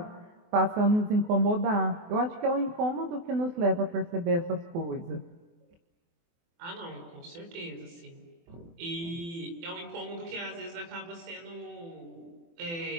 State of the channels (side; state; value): left; late; 24 ms